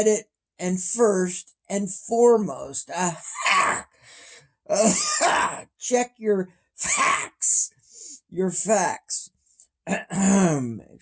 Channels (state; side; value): identical; both; correlation 1.00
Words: and first and foremost, check your facts.